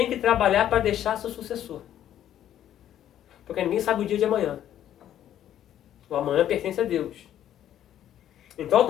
que trabalhar para deixar seu sucessor. Porque ninguém sabe o dia de amanhã. O amanhã pertence a Deus. Então,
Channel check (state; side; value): quieter; right; 11.2 dB